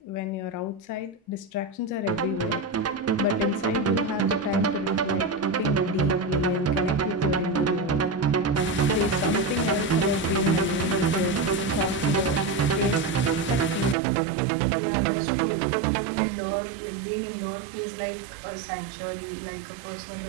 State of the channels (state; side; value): drops out; left; at 14.0 s